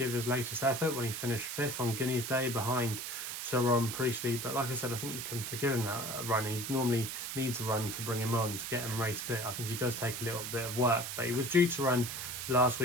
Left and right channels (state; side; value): noise; right; hiss, 5 dB below the sound